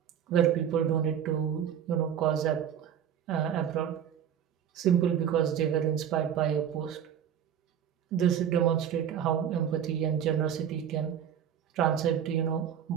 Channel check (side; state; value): left; quieter; 9.0 dB